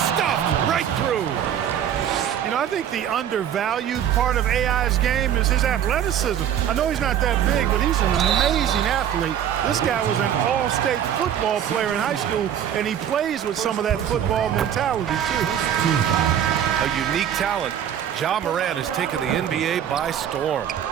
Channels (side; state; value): left; quieter; 9.7 dB